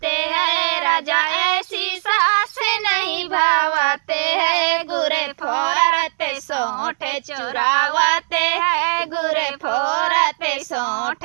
है, राजा ऐसी सास नहीं भावते है, गुरे फोरते सोंठे चुरावते है, गुरे फोरते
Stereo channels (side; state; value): left; silent; digital silence